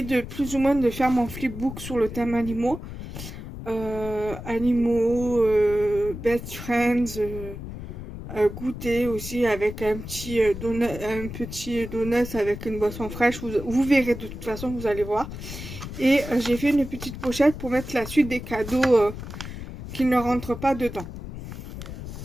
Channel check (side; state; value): left; noise; rumble, 10 dB below the sound